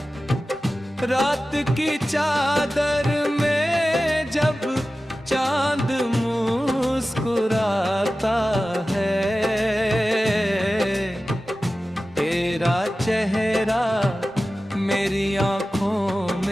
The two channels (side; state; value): both; normal; correlation 0.95